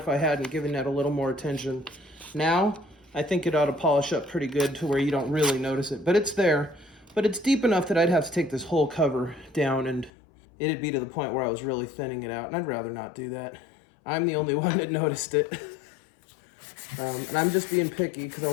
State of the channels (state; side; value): drops out; right; at 10.1 s